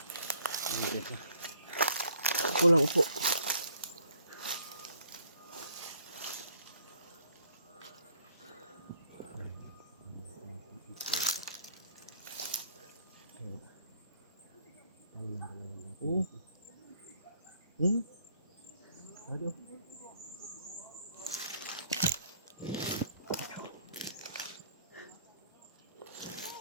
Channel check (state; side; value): inverted; both; correlation -0.61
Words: Upo lang, upo. Aduh.